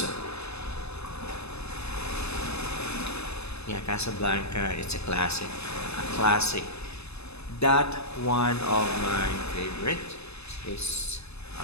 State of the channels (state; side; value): late; right; 0.79 ms